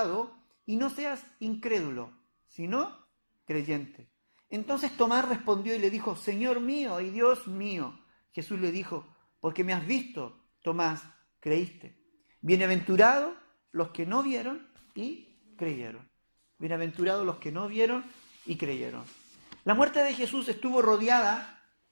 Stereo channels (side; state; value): both; inverted; correlation -1.00